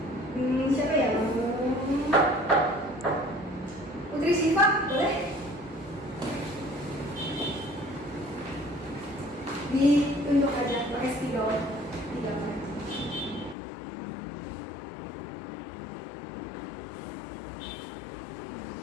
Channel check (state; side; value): drops out; right; at 13.6 s